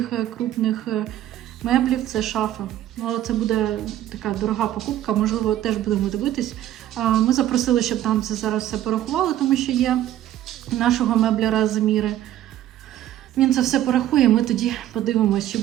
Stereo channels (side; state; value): left; quieter; 12.7 dB